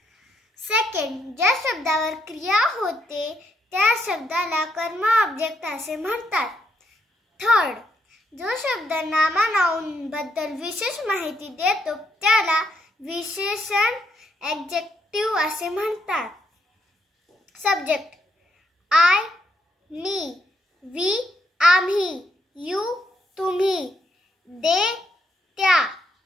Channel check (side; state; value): both; normal; correlation 0.76